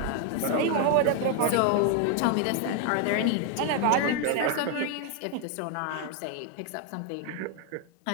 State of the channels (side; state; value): both; different; correlation 0.01